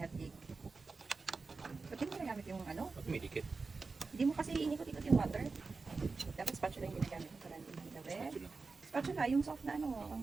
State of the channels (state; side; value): quieter; left; 4.2 dB